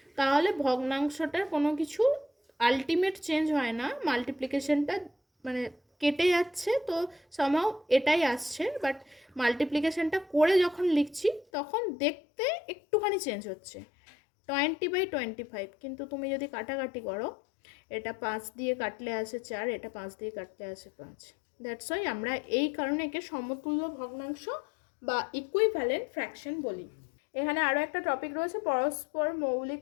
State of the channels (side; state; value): right; drops out; at 11.5 s